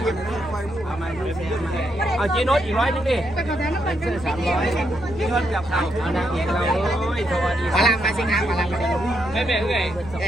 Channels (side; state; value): right; noise; rumble, 16 dB below the sound